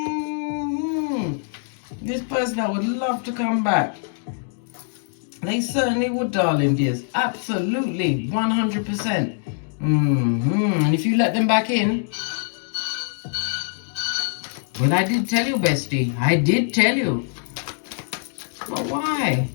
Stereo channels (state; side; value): silent; right; digital silence